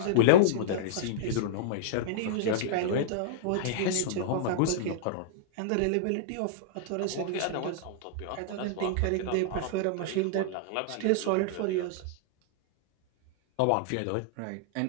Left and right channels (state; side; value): different; both; correlation -0.02